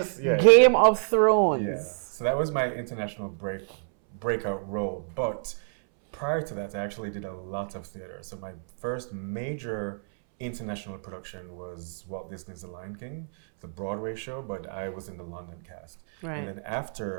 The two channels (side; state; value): left; silent; 59 dB below the other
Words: Game of Thrones. Yeah. So that was my international breakout role. But prior to that, I actually did a lot of theater. So my first major international production was Walt Disney's The Lion King, the Broadway show, but I was in the London cast. Right. And then